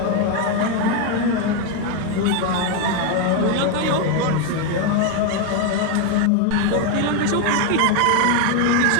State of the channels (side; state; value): both; different; correlation 0.01